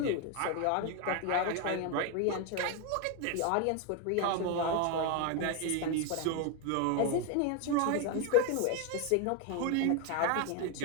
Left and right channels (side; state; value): both; different; correlation 0.02